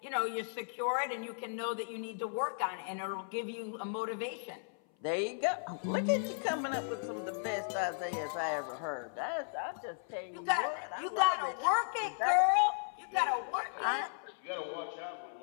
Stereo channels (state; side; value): silent; right; 54 dB below the other